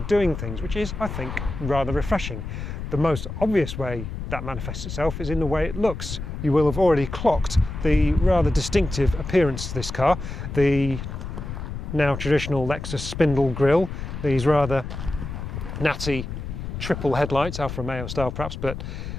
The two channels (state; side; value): noise; left; rumble, 7 dB below the sound